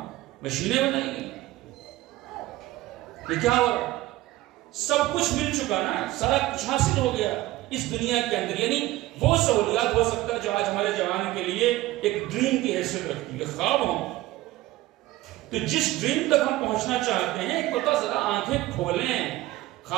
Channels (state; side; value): quieter; left; 17.1 dB